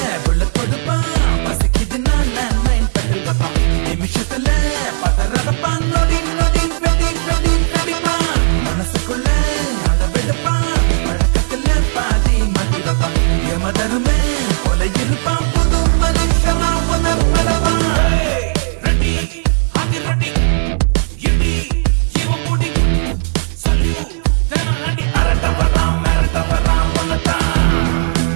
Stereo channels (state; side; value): silent; left; 70 dB below the other